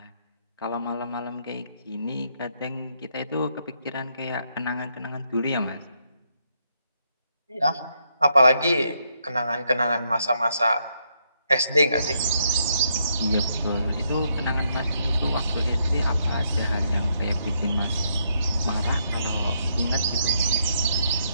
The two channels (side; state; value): both; inverted; correlation -0.76